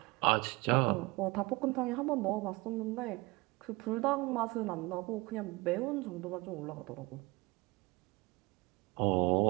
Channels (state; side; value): quieter; left; 24.0 dB